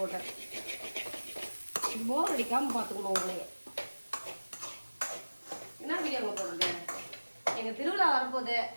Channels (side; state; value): both; inverted; correlation -1.00